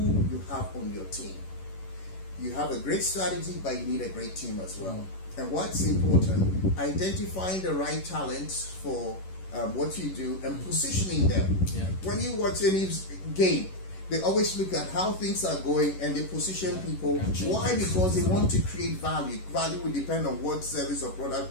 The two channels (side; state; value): right; late; 11 ms